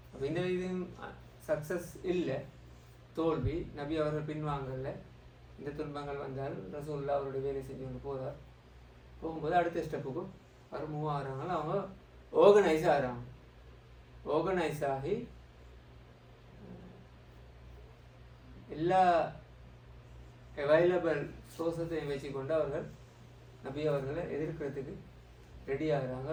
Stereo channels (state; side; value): identical; both; correlation 1.00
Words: அப்போ இந்த இது சக்ஸஸ் இல்லை, தோல்வி. நபி அவர்கள் பின்வாங்கல. இந்த துன்பங்கள் வந்தால் ரசூலுல்லாஹ் அவருடைய வேலை செஞ்சு கொண்டு போகிறார். போகும்போது அடுத்த ஸ்டெப்புக்கும் அவர் மூவ் ஆகிறாங்க. அவங்க ஆர்கனைஸ் ஆகிறாங்க. ஆர்கனைஸ் ஆகி எல்லா அவைலபிள் சோர்ஸத்தையும் வச்சுக்கொண்டு அவர்கள் நபி அவர்களை எதிர்க்கிறதுக்கு ரெடி ஆகிறாங்க.